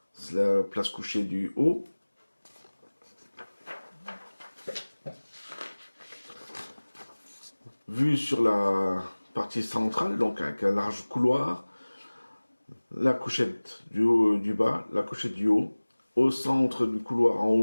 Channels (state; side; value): inverted; both; correlation -1.00